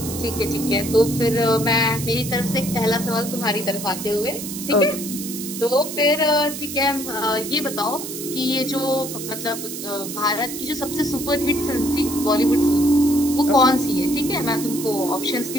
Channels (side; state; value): right; noise; hiss, 8 dB below the sound